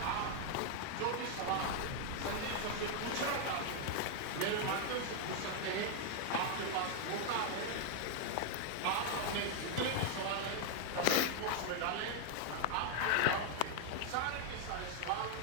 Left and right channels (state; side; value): different; both; correlation 0.00